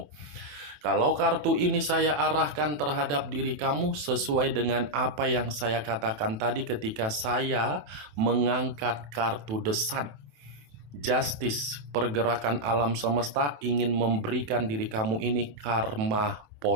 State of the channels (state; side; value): late; left; 27 ms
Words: Kalau kartu ini saya arahkan terhadap diri kamu sesuai dengan apa yang saya katakan tadi ketika saya mengangkat kartu The Sun. Justice, pergerakan alam semesta ingin memberikan diri kamu ini karma